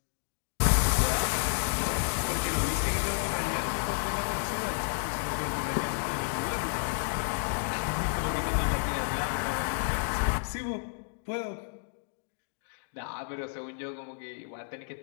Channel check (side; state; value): right; silent; digital silence